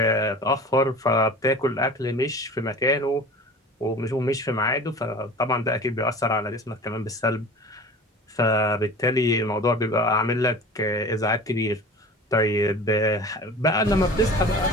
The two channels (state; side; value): normal; both; correlation 0.39